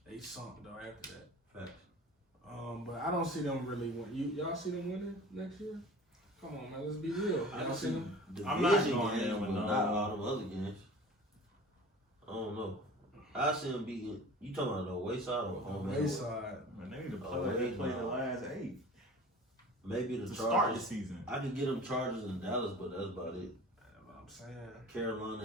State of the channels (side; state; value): both; normal; correlation 0.41